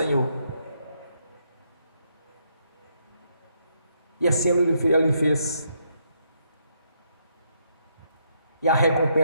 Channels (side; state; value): both; inverted; correlation -0.75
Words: E assim ele fez. E a